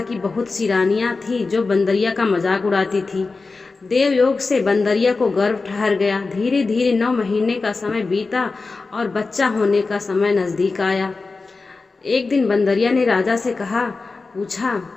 की बहुत सी रानियां थी जो बंदरिया का मजाक उड़ाती थी। देवयोग से बंदरिया को गर्भ ठहर गया। धीरे धीरे 9 महीने का समय बीता और बच्चा होने का समय नजदीक आया। एक दिन बंदरिया ने राजा से पूछा,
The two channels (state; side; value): quieter; right; 4.0 dB